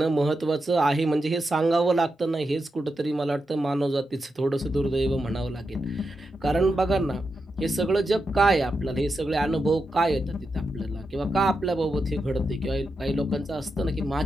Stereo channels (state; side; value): normal; both; correlation 0.87